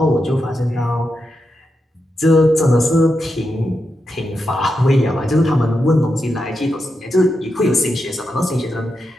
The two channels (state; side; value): normal; both; correlation 0.87